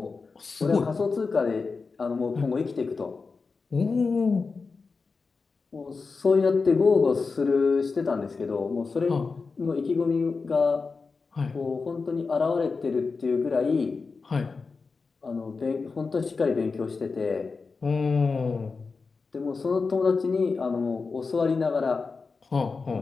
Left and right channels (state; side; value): quieter; right; 4.5 dB